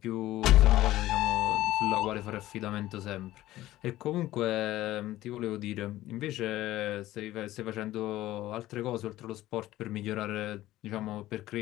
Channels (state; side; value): quieter; right; 15.5 dB